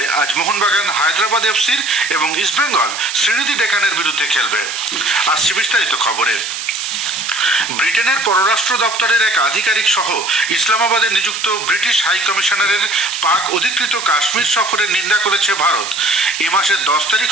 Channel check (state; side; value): noise; right; hiss, 7 dB below the sound